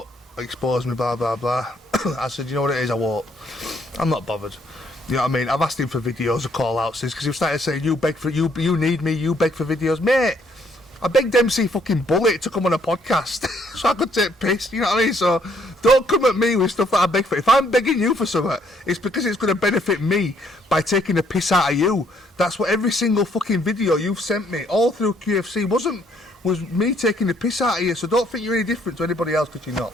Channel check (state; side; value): normal; both; correlation 0.67